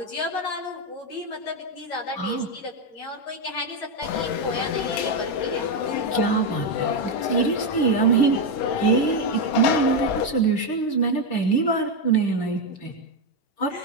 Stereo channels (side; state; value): right; late; 10 ms